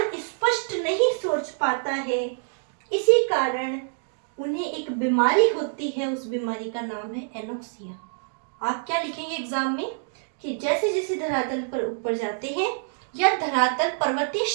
स्पष्ट नहीं सोच पाता है। इसी कारण उन्हें एक बीमारी होती है, उस बीमारी का नाम है एनोक्सिया। आप क्या लिखेंगे एग्जाम में कि जैसे जैसे धरातल पर ऊपर जाते हैं या धरातल पर्वतीय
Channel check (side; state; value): left; silent; digital silence